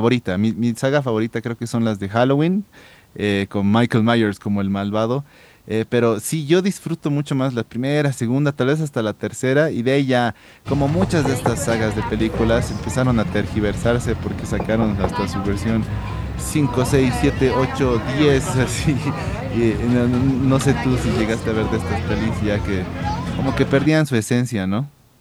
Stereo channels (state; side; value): identical; both; correlation 1.00